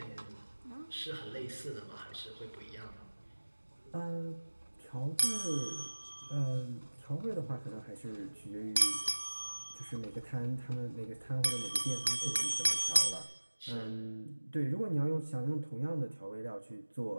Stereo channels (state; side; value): inverted; both; correlation -1.00